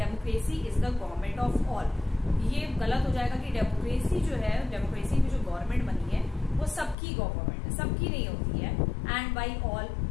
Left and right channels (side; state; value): right; drops out; at 7.0 s